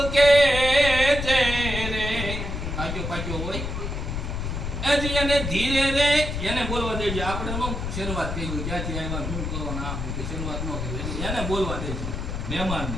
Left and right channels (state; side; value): noise; left; rumble, 4 dB below the sound